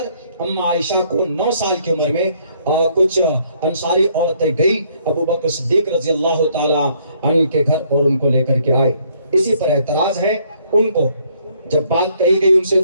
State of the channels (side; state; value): both; inverted; correlation -0.66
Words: اما عائشہ کو 9 سال کی عمر میں کچھ انصاری عورتیں گئی ابو بکر صدیق رضی اللہ تعالیٰ عنہ کے گھر اور ان کو لے کر کے آئے۔ اسی پر اعتراض ہے ان کو، جب بات کہی گئی ان سے